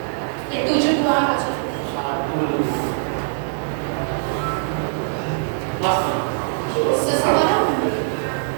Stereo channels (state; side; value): silent; left; 64 dB below the other